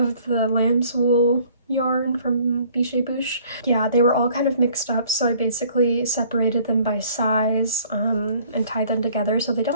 the lamb's wool yarn from Bichet Bouche. Yeah, they were all kind of mixed up, so I basically separated them by size and tied them together so they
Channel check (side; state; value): both; inverted; correlation -0.56